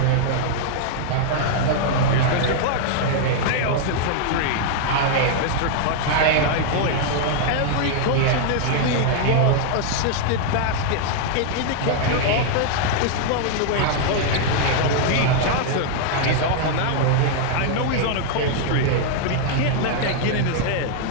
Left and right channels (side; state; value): both; different; correlation -0.01